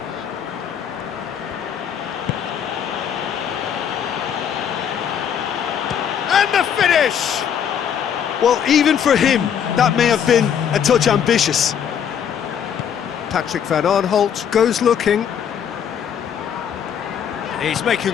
And the finish! Well, even for him, that may have been a touch ambitious. Patrick van Aanholt goes looking. He's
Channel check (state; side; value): quieter; right; 8.3 dB